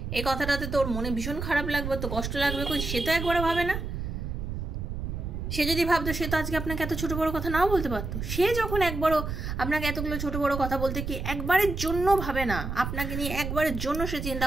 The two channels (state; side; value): noise; right; rumble, 5 dB below the sound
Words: এই কথাটাতে তোর মনে ভীষণ খারাপ লাগবে, তো কষ্ট লাগবে, কই সে তো একবারও ভাবে না। সে যদি ভাবতো, সে তো আজকে আপনাকে এত ছোটো বড়ো কথা নাও বলতে পারতো। সে যখন একবারও আপনাকে এতগুলো ছোটো বড়ো কথা বলতে কি একবারের জন্য ভাবে না, আপনাকে নিয়ে একবারের জন্য সে চিন্তা